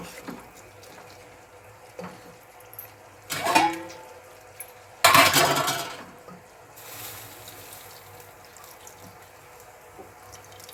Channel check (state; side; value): identical; both; correlation 1.00